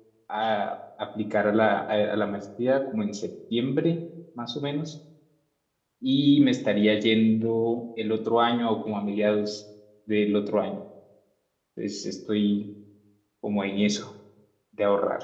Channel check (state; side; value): identical; both; correlation 1.00